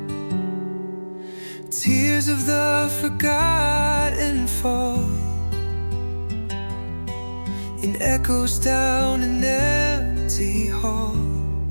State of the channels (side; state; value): both; inverted; correlation -1.00